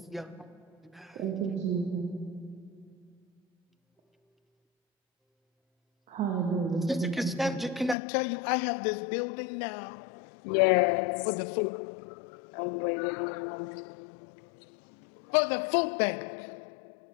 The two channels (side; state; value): right; drops out; at 8.0 s